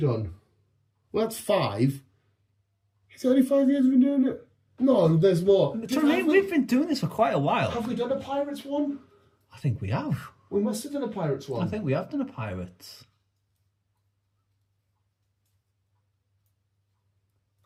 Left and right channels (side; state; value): both; identical; correlation 1.00